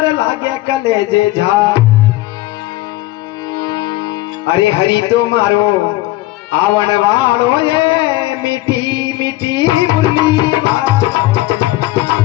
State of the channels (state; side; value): quieter; right; 17.5 dB